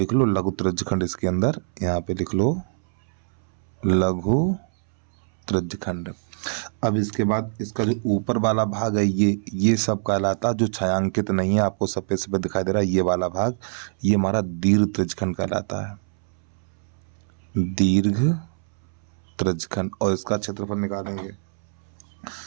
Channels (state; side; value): silent; left; 62 dB below the other